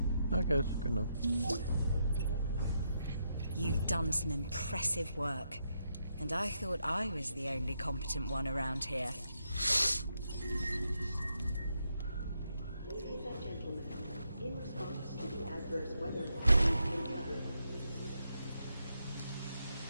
I guess, good enough. You've done some impressive work, and I thought I was the only competent one around here. Ladies and gentlemen, in response to the adverse weather, we've been covered.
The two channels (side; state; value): both; inverted; correlation -0.81